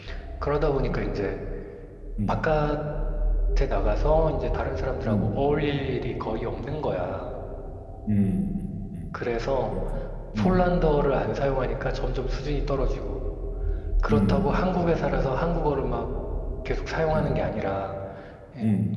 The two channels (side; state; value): both; identical; correlation 1.00